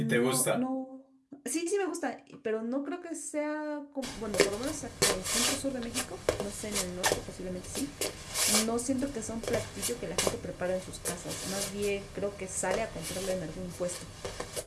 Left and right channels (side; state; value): both; identical; correlation 1.00